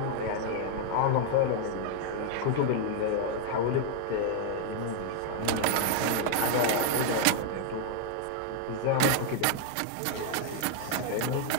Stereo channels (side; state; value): both; different; correlation 0.00